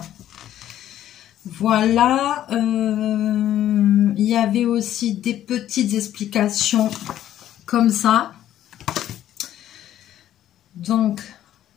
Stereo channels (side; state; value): right; quieter; 11.9 dB